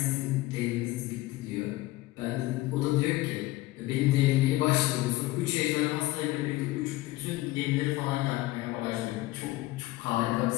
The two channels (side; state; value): right; quieter; 18.3 dB